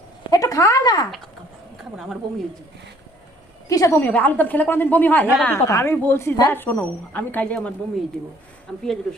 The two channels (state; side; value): normal; both; correlation 0.59